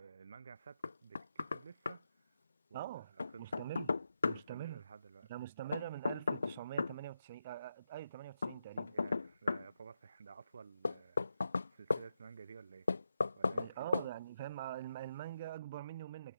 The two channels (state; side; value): inverted; both; correlation -0.85